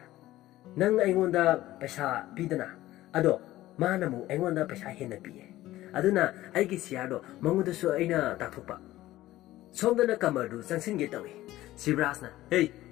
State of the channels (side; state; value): right; quieter; 15.6 dB